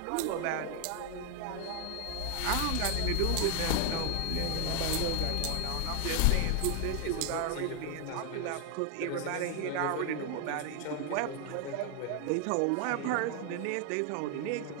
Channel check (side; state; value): both; different; correlation 0.00